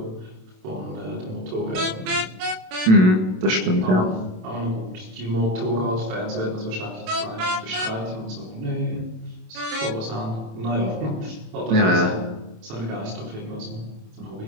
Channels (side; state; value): left; late; 27 ms